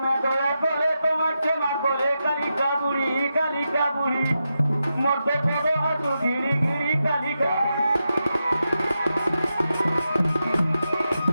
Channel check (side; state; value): both; inverted; correlation -0.88